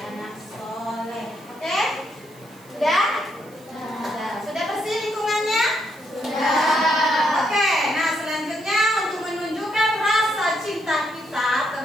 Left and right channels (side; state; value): right; noise; hiss, 26 dB below the sound